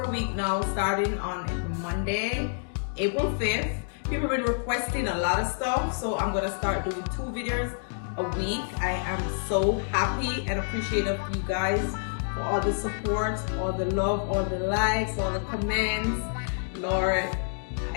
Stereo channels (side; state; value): right; silent; digital silence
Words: week now, starting on Monday, April 5th. People have been requesting a lot of stuff, so I'm going to start doing 2 videos a week. I am so happy and appreciative of you guys for all the support, all the love, all the likes, all the comments. Lord,